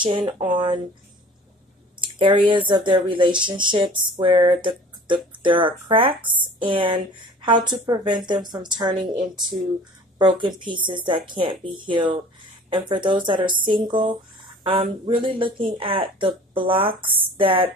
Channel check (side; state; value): both; normal; correlation 0.46